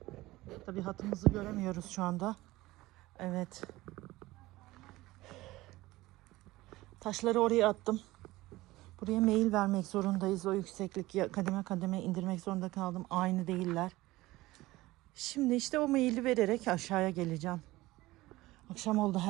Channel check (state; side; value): quieter; left; 18.6 dB